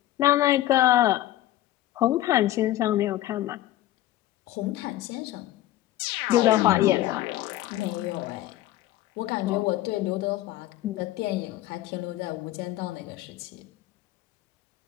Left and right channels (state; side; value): quieter; right; 14.8 dB